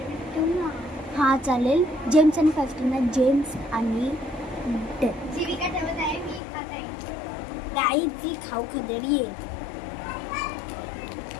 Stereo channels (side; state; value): right; drops out; at 6.4 s